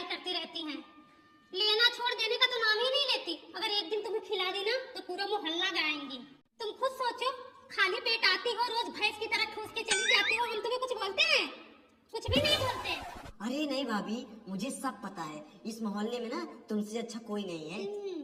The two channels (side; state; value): both; identical; correlation 1.00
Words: करती रहती हैं। लेना छोड़ देने का तो नाम ही नहीं लेती। अगर एक दिन तुम्हें खिला दी ना तो पूरा मोहल्ला गाएंगी। तुम खुद सोचो, खाली पेट आती हो, रोज भैंस की तरह ठूस के चली जाती हो, हम तुम्हें कुछ बोलते हैं? कुछ भी नहीं बोलते। अरे नहीं भाभी, मुझे सब पता है। इस मोहल्ले में ना तुमसे अच्छा कोई नहीं है।